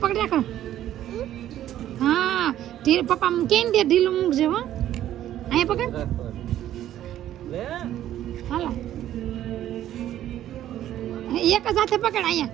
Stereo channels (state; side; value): quieter; left; 12.2 dB